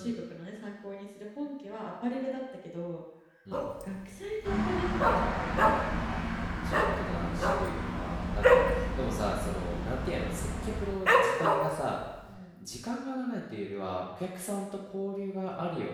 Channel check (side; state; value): both; identical; correlation 1.00